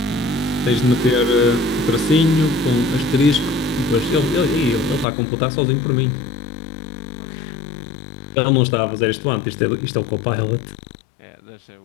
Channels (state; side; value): drops out; right; at 5.1 s